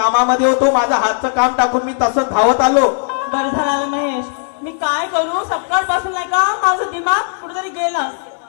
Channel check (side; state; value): right; silent; digital silence